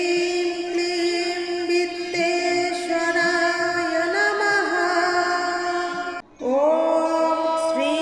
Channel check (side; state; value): both; identical; correlation 1.00